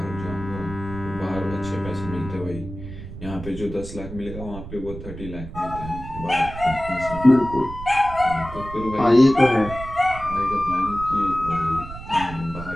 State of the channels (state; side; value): noise; right; rumble, 11 dB below the sound